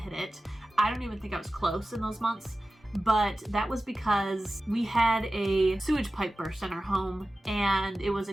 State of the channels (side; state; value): both; normal; correlation 0.95